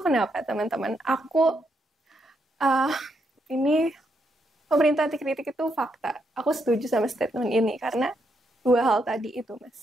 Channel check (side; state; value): both; normal; correlation 0.78